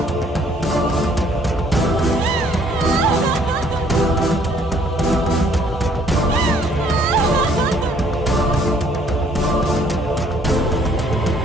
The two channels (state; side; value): normal; both; correlation 0.62